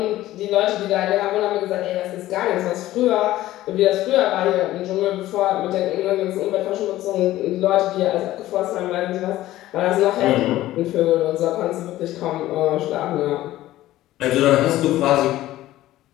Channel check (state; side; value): quieter; right; 15.2 dB